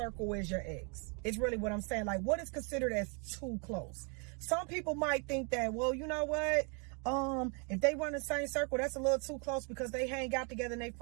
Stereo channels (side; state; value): left; quieter; 36.0 dB